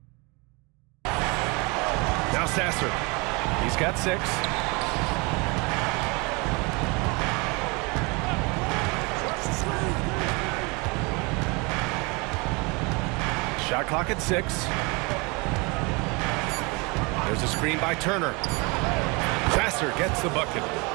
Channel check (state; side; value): quieter; left; 28.3 dB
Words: Now Sasser. He's got 6. Shot clock at 6. There's a screen by Turner. Sasser gets the bucket.